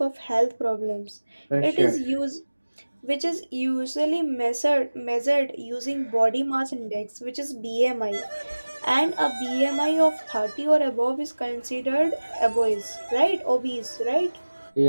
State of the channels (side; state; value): both; inverted; correlation -1.00